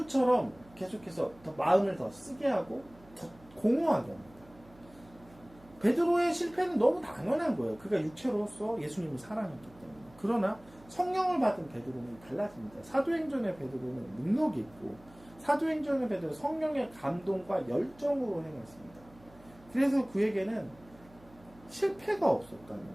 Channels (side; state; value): right; noise; hum, 24 dB below the sound